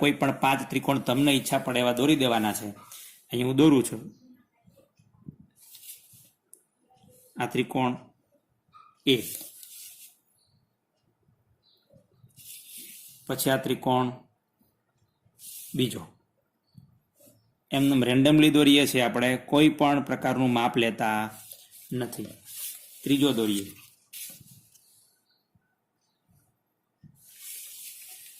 કોઈ પણ 5 ત્રિકોણ તમને ઈચ્છા પડે એવા દોરી દેવાના છે. અહીં હું દોરું છું. આ ત્રિકોણ એ, પછી આ ત્રિકોણ બીજો. એમને રેન્ડમલી દોરીએ છીએ આપણે, કોઈ પણ પ્રકારનું માપ લેતા નથી. ત્રીજો દોરીએ.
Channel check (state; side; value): identical; both; correlation 1.00